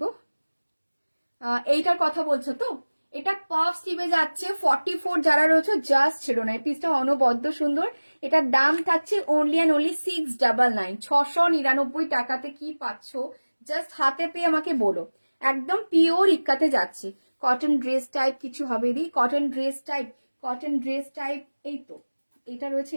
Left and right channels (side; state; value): both; inverted; correlation -1.00